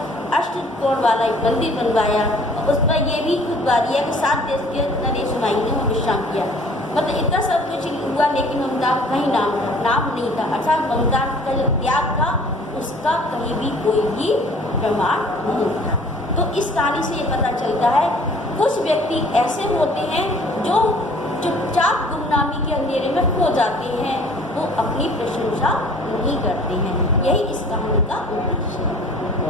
अष्टकोण वाला एक मंदिर बनवाया और उस पर यह भी खुतबा दिया कि 7 देश के नरेश हुमायूं ने वहाँ विश्राम किया। मतलब इतना सब कुछ हुआ, लेकिन ममता का कहीं नाम नहीं था, अर्थात ममता का जो त्याग था उसका कहीं भी कोई भी प्रमाण नहीं था। तो इस कहानी से ये पता चलता है कुछ व्यक्ति ऐसे होते हैं जो चुपचाप गुमनामी के अंधेरे में खो जाते हैं, वो अपनी प्रशंसा नहीं करते हैं। यही इस कहानी का उद्देश्य है।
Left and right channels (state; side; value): normal; both; correlation 0.52